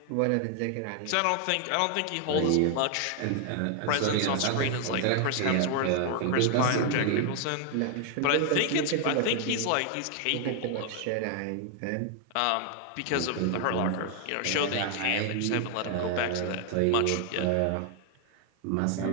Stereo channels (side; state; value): both; different; correlation 0.00